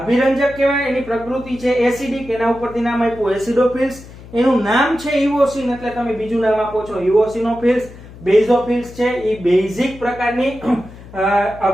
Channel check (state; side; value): noise; left; hum, 18 dB below the sound